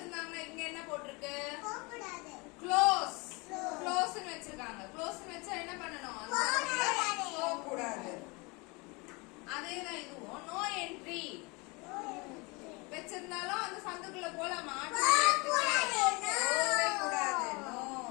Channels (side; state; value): right; quieter; 27.4 dB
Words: இங்க என்ன போட்டுருக்கு? போக கூடாது. க்ளோஸ். க்ளோஸ்னு வச்சிருக்காங்க. க்ளோஸ்னு வச்சா என்ன பண்ணனும்? போக கூடாது. அதேதான் இதுவும் நோ என்ட்ரி. வச்சிருந்தாலும் அந்த சந்துக்குள்ள போலாமா? போகவே கூடாது. நோ.